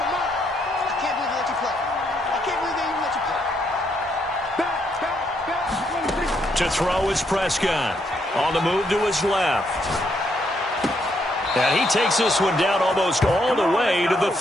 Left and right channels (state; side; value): normal; both; correlation 0.75